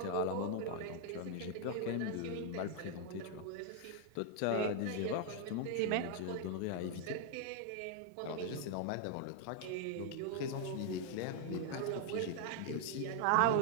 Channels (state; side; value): different; both; correlation 0.00